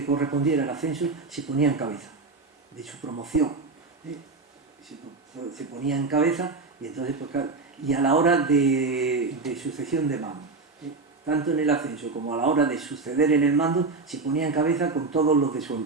correspondiera el ascenso se ponía en cabeza de su promoción. Se ponía en cabeza y entonces pues, claro, y a la hora de sucesión de mando, tanto en el ascenso como a la hora de suceder en el mando, se ponía en cabeza con todos los de su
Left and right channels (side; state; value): left; quieter; 3.9 dB